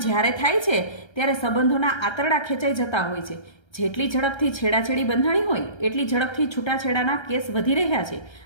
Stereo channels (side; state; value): right; late; 1.3 ms